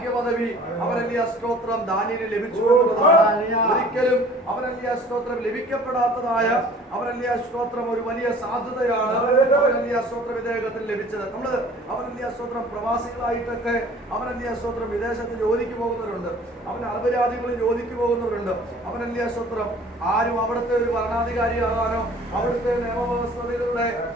അവനല്ലേ സ്തോത്രം ദാനിയേലിന് ലഭിച്ചു എന്നുള്ളതാണ്. ഒരിക്കലും അവനല്ലേ സ്തോത്രം ലഭിക്കപ്പെടാത്തതായ അവനല്ലേ സ്തോത്രം ഒരു വലിയ സാധ്യതയാണ് അവനല്ലേ സ്തോത്രം ഇദ്ദേഹത്തിന് ലഭിച്ചത്. നമ്മള് അവനല്ലേ സ്തോത്രം പ്രവാസികളായിട്ടൊക്കെ അവനല്ലേ സ്തോത്രം വിദേശത്ത് ജോലിക്ക് പോകുന്നവരുണ്ട്, അവൻ അറബ് രാജ്യങ്ങളിൽ ജോലിക്ക് പോകുന്നവരുണ്ട്. അവനല്ലേ സ്തോത്രം ആരും അവിടുത്തെ ഒരു ഭരണാധികാരിയാകാനോ അവിടുത്തെ നിയമവ്യവസ്ഥകളുടെ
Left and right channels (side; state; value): both; normal; correlation 0.49